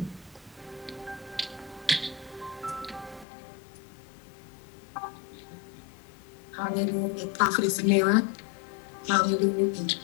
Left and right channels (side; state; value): right; drops out; at 3.2 s